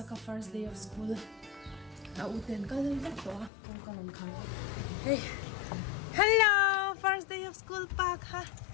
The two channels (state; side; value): drops out; right; at 3.5 s